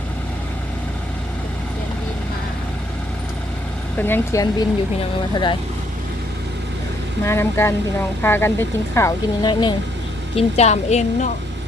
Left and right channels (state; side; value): normal; both; correlation 0.70